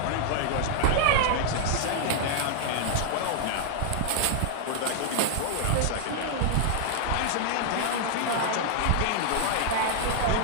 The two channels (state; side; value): different; both; correlation -0.01